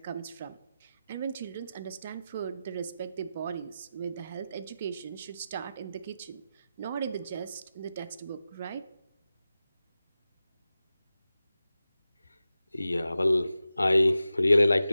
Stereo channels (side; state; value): both; inverted; correlation -0.93